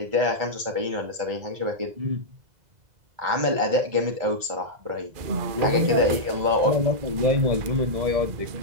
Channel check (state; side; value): late; left; 2.0 ms